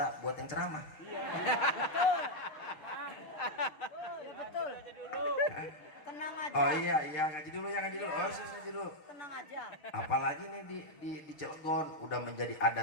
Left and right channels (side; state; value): right; late; 6.6 ms